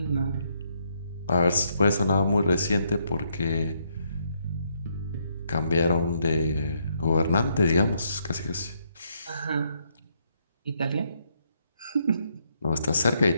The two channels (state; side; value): inverted; both; correlation -0.75